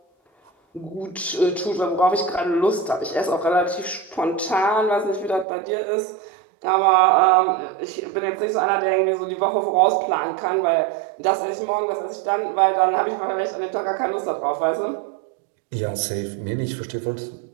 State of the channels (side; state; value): left; drops out; at 5.5 s